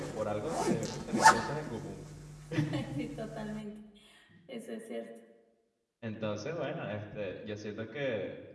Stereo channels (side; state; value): both; identical; correlation 1.00